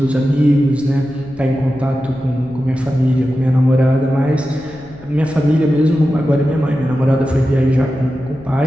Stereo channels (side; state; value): left; noise; rumble, 21 dB below the sound